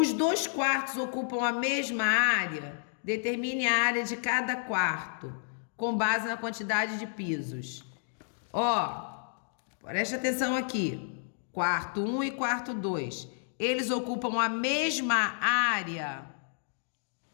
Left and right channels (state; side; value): silent; right; digital silence